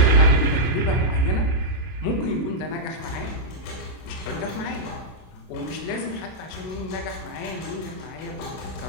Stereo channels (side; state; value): right; late; 32 ms